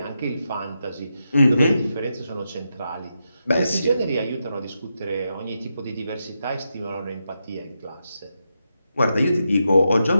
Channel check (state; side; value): inverted; both; correlation -0.86